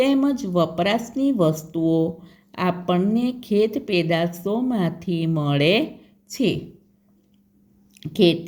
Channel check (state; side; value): identical; both; correlation 1.00